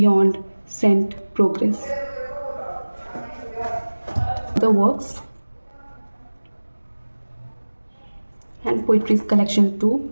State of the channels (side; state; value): both; inverted; correlation -1.00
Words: Saint, progress. The works and poetries collection 2।